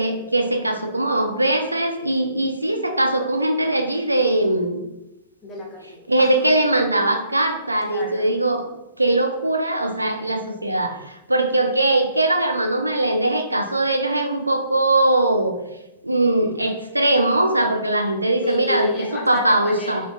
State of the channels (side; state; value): both; inverted; correlation -0.73